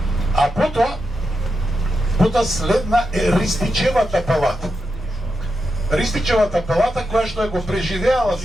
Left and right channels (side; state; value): both; normal; correlation 0.87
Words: а потоа следна е Ристичевата палата. Ристичевата палата која што го преживеала